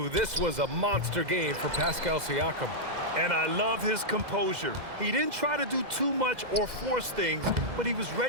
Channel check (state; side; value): late; left; 2.0 ms